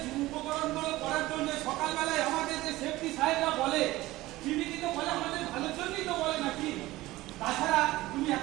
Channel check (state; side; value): quieter; left; 17.9 dB